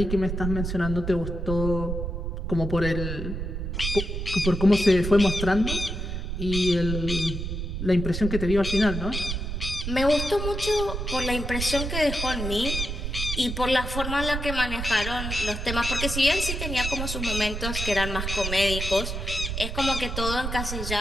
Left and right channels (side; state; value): right; noise; rumble, 4 dB below the sound